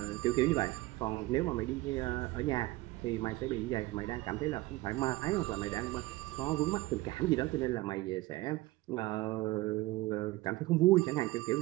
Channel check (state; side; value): quieter; left; 19.3 dB